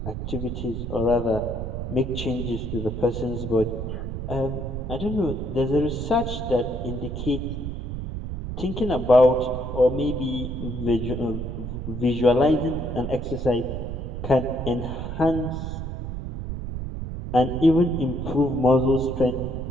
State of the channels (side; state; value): right; noise; rumble, 5 dB below the sound